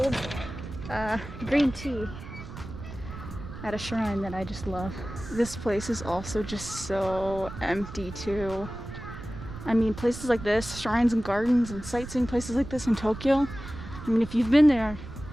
green tea at a shrine that I just love. This place is also just so empty too. I mean, places like this, shrines and gardens and sightseeing places like this in Tokyo, I mean, if you've been there,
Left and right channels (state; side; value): noise; right; rumble, 12 dB below the sound